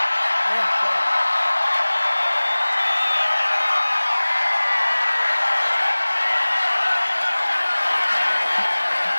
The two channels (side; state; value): both; inverted; correlation -1.00